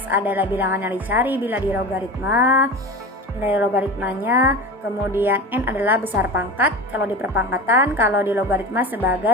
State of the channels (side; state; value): both; normal; correlation 0.30